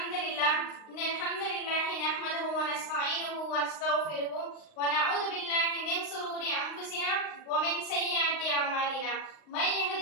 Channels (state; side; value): late; right; 38 ms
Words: لله نحمده ونستعينه ونستغفره ونعوذ بالله من شرور أنفسنا ومن سيئات أعمالنا. من